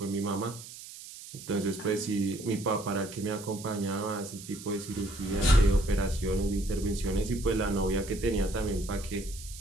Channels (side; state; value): right; noise; hiss, 14 dB below the sound